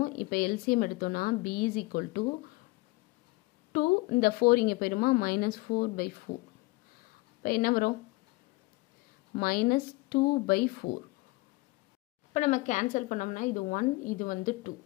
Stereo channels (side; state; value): right; quieter; 22.8 dB